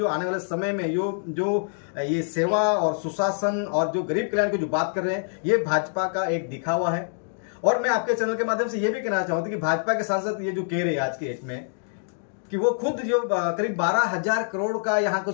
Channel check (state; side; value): silent; right; digital silence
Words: आने वाले समय में जो ये सेवा और सुशासन और जो गरीब कल्याण की जो बात कर रहे हैं, ये भाजपा का एक दिखावा है। और मैं आपके चैनल के माध्यम से ये भी कहना चाहता हूं कि भाजपा के सांसद ये जो कह रहे हैं आज के डेट में कि वो खुद जो करीब 12,000 करोड़ का यहाँ का